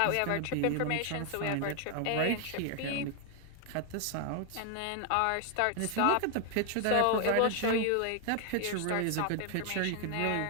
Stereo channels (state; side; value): different; both; correlation 0.00